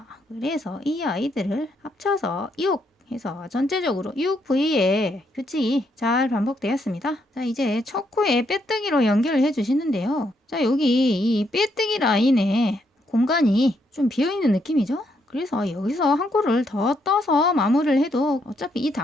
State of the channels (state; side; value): normal; both; correlation 0.76